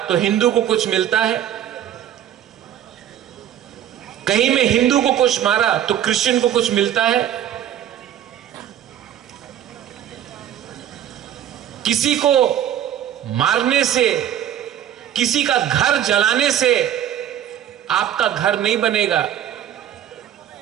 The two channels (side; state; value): left; quieter; 10.6 dB